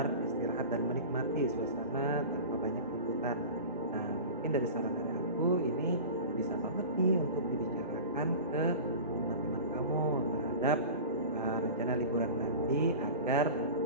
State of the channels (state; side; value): inverted; both; correlation -0.34